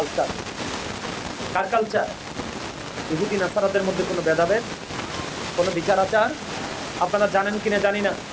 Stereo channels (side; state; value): both; identical; correlation 1.00